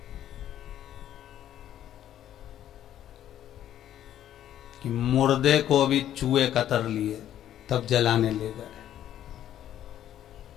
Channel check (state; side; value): quieter; right; 11.4 dB